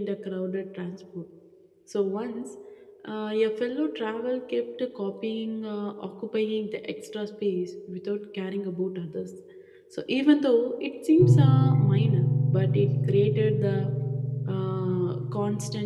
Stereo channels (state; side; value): identical; both; correlation 1.00